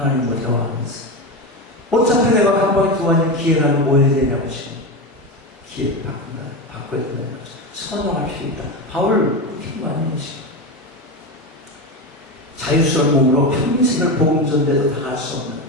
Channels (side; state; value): both; normal; correlation 0.19